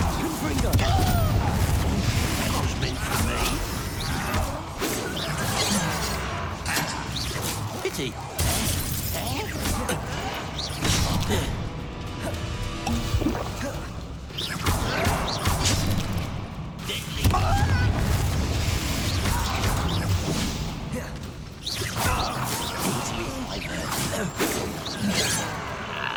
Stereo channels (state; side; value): identical; both; correlation 1.00